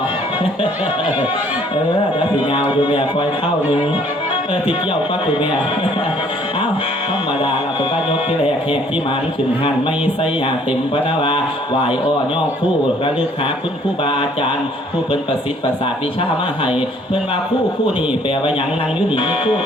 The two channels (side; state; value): both; normal; correlation 0.60